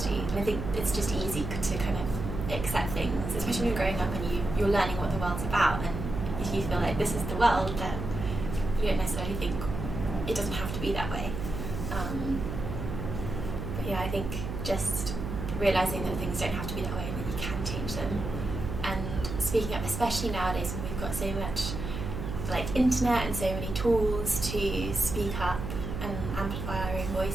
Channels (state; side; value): noise; right; hum, 5 dB below the sound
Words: And I think it's just easy to kind of accept things, especially when you're growing up and you're learning what the world's about, and if you feel like this is the world, then you don't necessarily think it doesn't have to be that way. But yeah, I think just realising that things don't have to be that way and that you can change them, and speaking up, especially nowadays when we've got so much internet and so many tools to speak up and amplify our own